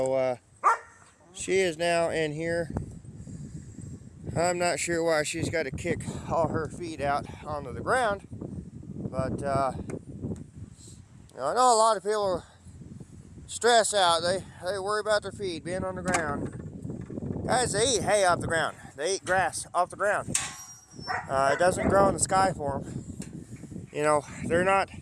she is now in here. I'm not sure why she's got to kick all her feet out onto the ground, but you know, I know a lot of people stress out. They worry about their feet being on the ground. Guys, they eat hay off the ground. They eat grass off the ground. It doesn't grow in the sky for them. You know, they're not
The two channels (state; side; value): identical; both; correlation 1.00